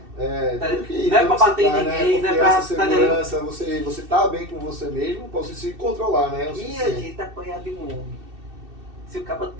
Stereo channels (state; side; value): late; left; 2.6 ms